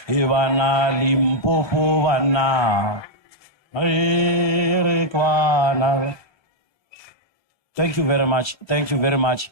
Ivana Limpopo vana. Arekwana. Thank you very much. Thank you very much.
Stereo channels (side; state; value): right; late; 1.3 ms